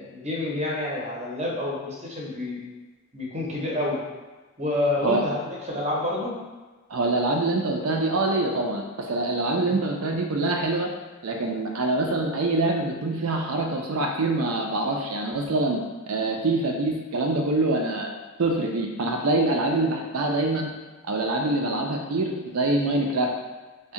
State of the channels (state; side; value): normal; both; correlation 0.10